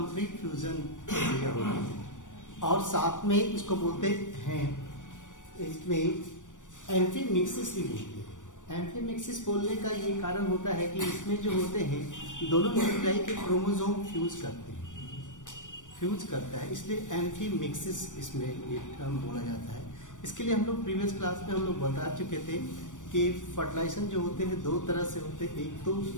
फ्यूजन प्रक्रिया होती है। और साथ में इसको बोलते हैं, इसमें एम्फीमिक्सिस भी बोलते हैं। एम्फीमिक्सिस बोलने का ये कारण होता है कि इसमें जो होते हैं दोनों न्यूक्लियाई के क्रोमोसोम फ्यूज करता है, इसलिए एम्फीमिक्सिस इसमें ये टर्म बोला जाता है। इसके लिए हम लोग प्रीवियस क्लास में हम लोग बता चुके थे कि फर्टिलाइजेशन जो होते हैं दो तरह से होते हैं। एक तो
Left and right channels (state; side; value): late; right; 0.87 ms